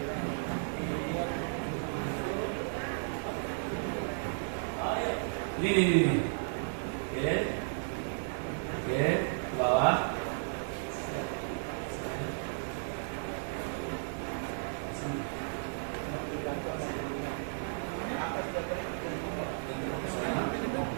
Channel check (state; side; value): silent; left; digital silence